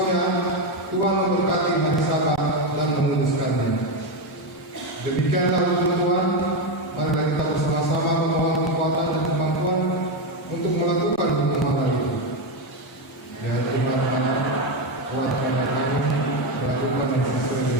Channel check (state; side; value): normal; both; correlation 0.10